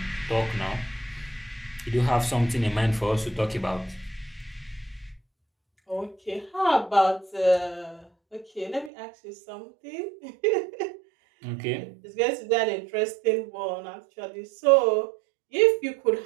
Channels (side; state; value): left; drops out; at 8.9 s